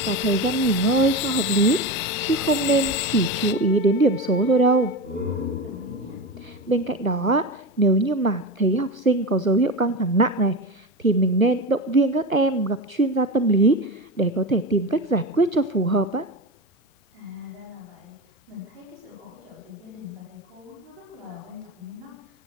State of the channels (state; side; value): normal; both; correlation 0.23